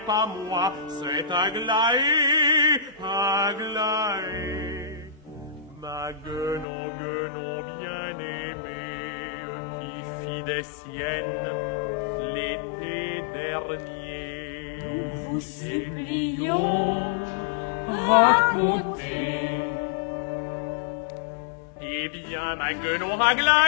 pas moi, c'est Aglaé, Aglaé. Ma guenon bien-aimée, qui fit des siennes l'été dernier. Nous vous supplions, racontez. Eh bien, ma guenon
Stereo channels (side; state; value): right; drops out; at 6.7 s